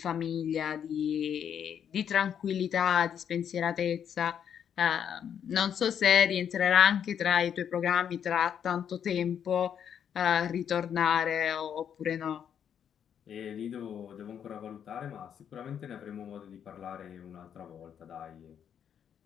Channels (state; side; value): quieter; right; 8.5 dB